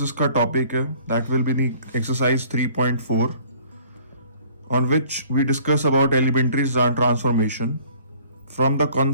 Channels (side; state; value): both; inverted; correlation -0.54